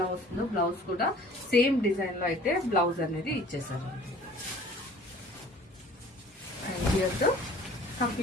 వస్తుందో బ్లౌజ్ కూడా సేమ్ డిజైన్ లో అయితే బ్లౌజ్ అనేది ఇచ్చేసారు. And here the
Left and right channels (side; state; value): both; normal; correlation 0.49